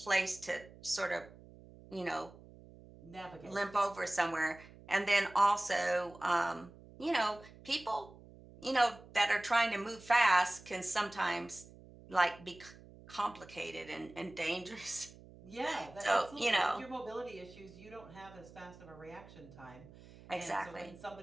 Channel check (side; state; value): right; noise; hum, 20 dB below the sound